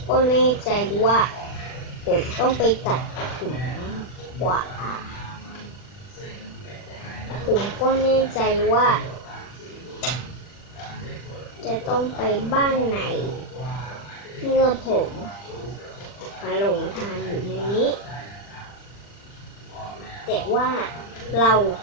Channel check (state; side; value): late; right; 40 ms